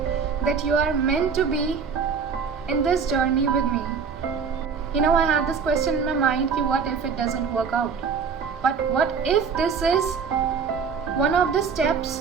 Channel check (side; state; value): left; quieter; 6.0 dB